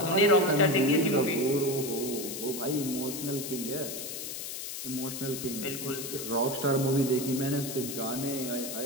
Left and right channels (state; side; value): noise; left; hiss, 7 dB below the sound